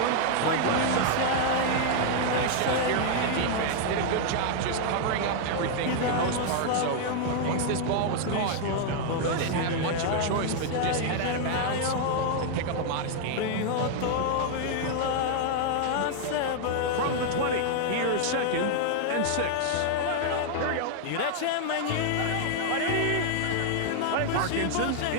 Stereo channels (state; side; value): different; both; correlation 0.00